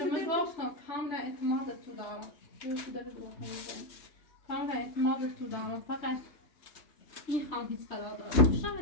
خدمت گفتم کاملا اعتماد تو دارم تو داره دو کاملا اعتماد تو دارم فقط میخوام هیچ قرارداد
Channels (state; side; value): late; right; 3.2 ms